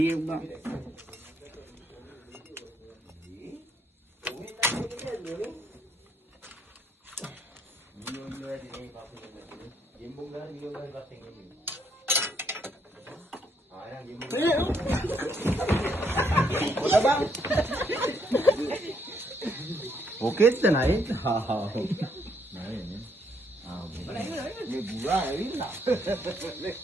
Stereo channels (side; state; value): both; normal; correlation 0.71